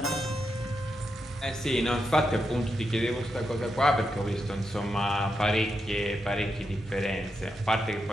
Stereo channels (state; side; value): normal; both; correlation 0.85